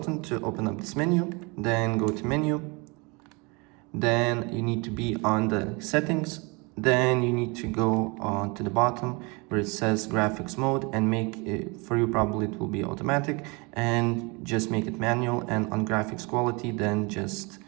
to open up this menu, then go to menu. Then you need to be on the settings. Then you need to go on to the bottom where it says graphics mode and make it, for you probably it will be automatic, and just make it manual, and on graphics quality then just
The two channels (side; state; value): left; quieter; 28.6 dB